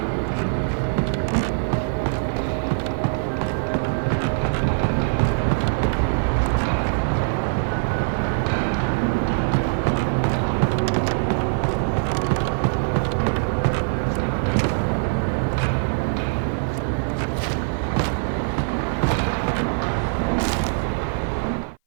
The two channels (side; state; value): left; silent; 57 dB below the other